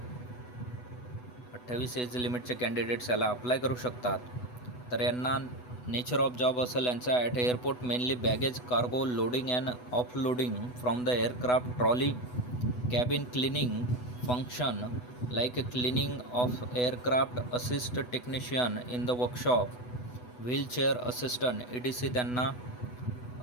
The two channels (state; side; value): late; right; 8.1 ms